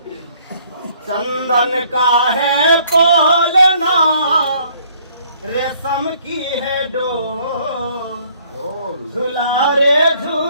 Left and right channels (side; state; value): both; inverted; correlation -0.62